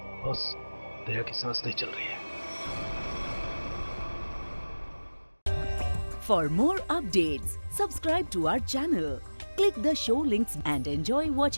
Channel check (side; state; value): both; inverted; correlation -1.00